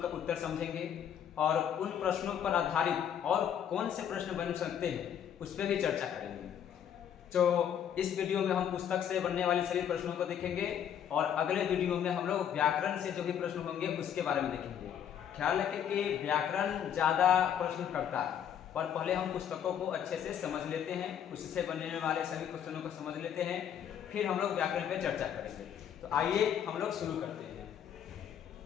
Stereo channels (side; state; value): right; quieter; 9.1 dB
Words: उत्तर समझेंगे और उन प्रश्नों पर आधारित और कौन से प्रश्न बन सकते हैं उस पर भी चर्चा करेंगे। तो इस वीडियो में हम पुस्तक से बनने वाले सभी प्रश्नों को देखेंगे और अगले वीडियो में हम लोग व्याकरण से जो भी प्रश्न होंगे उसके बारे में देखेंगे। ख्याल रखें कि व्याकरण ज़्यादा प्रश्न करता है, पर पहले हम पुस्तकों को अच्छे से समझ लेते हैं, उससे बनने वाले सभी क्वेश्चनों को समझ लेते हैं, फिर हम लोग व्याकरण पे चर्चा करेंगे। तो आइए हम लोग शुरू करते हैं।